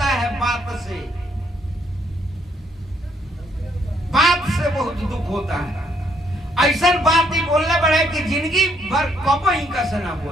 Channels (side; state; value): both; normal; correlation 0.70